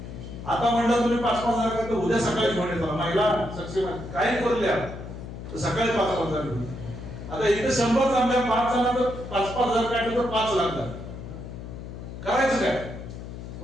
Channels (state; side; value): noise; left; hum, 10 dB below the sound